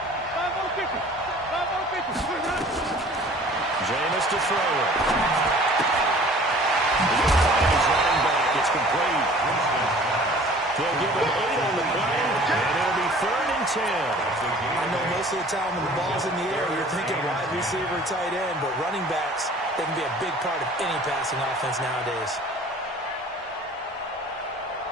Jameis to throw it. He's running back. It's complete. They'll give him 8 on the play, and it'll be 3rd and 10. I know most of the time when the ball's in the air, you're thinking wide receiver, tight end, but running backs, they can be a big part of any passing offense nowadays.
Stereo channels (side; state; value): both; normal; correlation 0.48